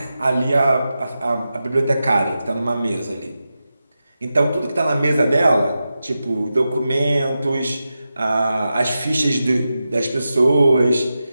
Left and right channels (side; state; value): both; inverted; correlation -0.91